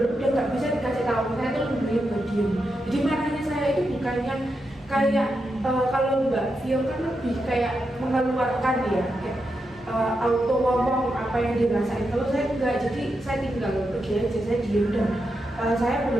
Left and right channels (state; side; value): normal; both; correlation 0.86